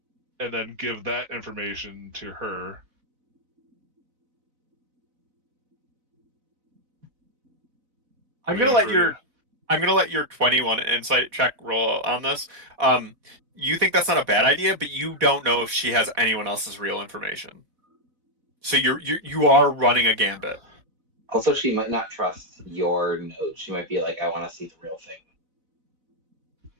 and then give that information to her. I'm Waiting gonna let for your 21 insight check roll on this. You think that's not a bad idea, but you don't know if she has anyone else's real information. So you are running a gambit. Also, she might not trust your note. She might be like, I want to see the real thing.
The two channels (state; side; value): late; left; 3.9 ms